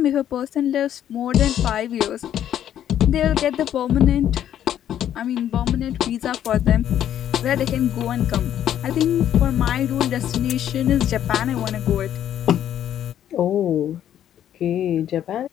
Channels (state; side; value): quieter; right; 10.6 dB